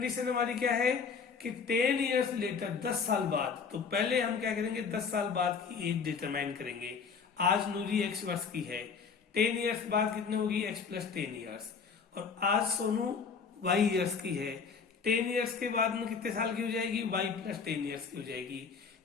हमारी क्या है कि 10 ईयर्स लेटर, 10 साल बाद। तो पहले हम क्या करेंगे, 10 साल बाद की एज डिटरमाइन करेंगे। आज नूरी x वर्ष की है, 10 ईयर्स बाद कितनी होगी, x प्लस 10 ईयर्स। और आज सोनू y ईयर्स की है, 10 ईयर्स के बाद में कितने साल की हो जाएगी, y प्लस 10 ईयर्स की हो जाएगी।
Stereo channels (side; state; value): right; quieter; 5.7 dB